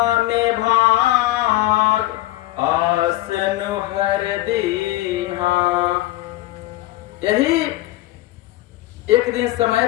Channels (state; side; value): quieter; right; 16.9 dB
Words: भाग आसन हर दीहा। यही एक दिन समय